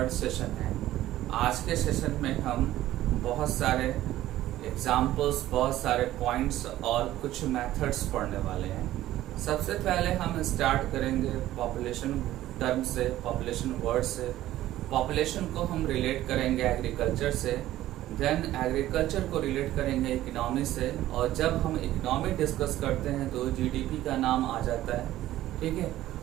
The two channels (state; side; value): quieter; left; 14.4 dB